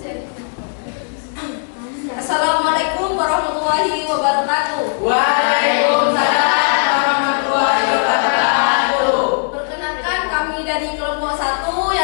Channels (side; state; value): right; silent; digital silence